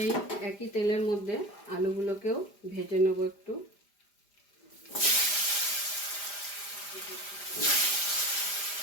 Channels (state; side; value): late; right; 5.0 ms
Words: এই একই তেলের মধ্যে আলুগুলোকেও ভেজে নেব একটু।